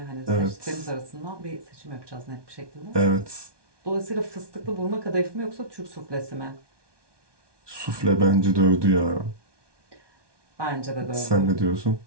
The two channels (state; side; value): late; left; 1.2 ms